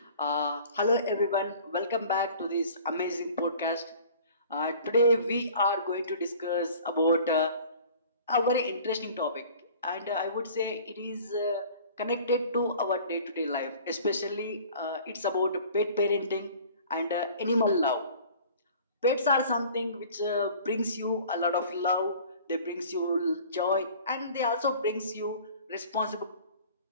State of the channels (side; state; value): both; inverted; correlation -0.47